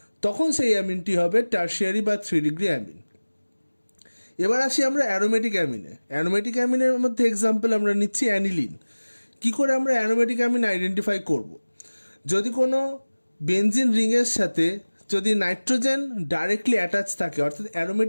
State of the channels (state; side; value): inverted; both; correlation -1.00